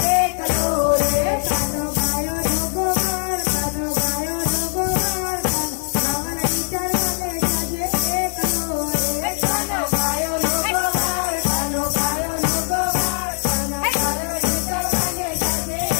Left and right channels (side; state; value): right; silent; digital silence